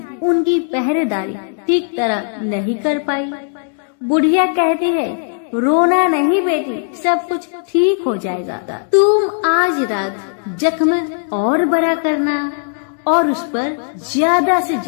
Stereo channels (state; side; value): silent; right; digital silence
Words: उनकी पहरेदारी ठीक तरह नहीं कर पाई। बुढ़िया कहती है, रोना नहीं बेटी, सब कुछ ठीक हो जाएगा। तुम आज रात जख्म और बड़ा करना और उस पर ज्यादा से